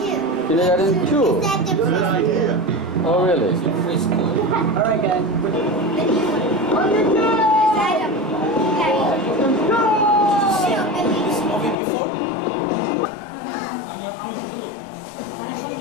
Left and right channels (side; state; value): right; drops out; at 11.8 s